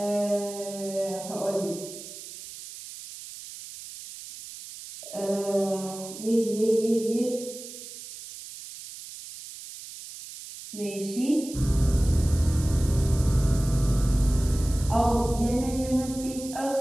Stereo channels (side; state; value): right; noise; hiss, 13 dB below the sound